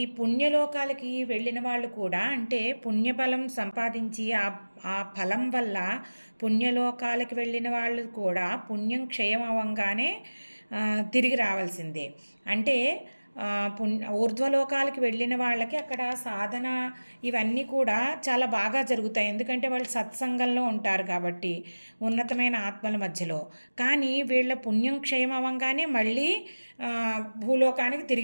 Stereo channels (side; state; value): both; inverted; correlation -1.00